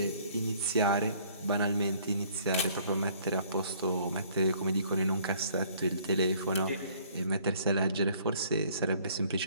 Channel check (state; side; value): inverted; both; correlation -0.58